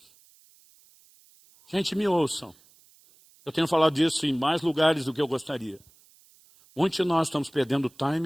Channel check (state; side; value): noise; right; hiss, 29 dB below the sound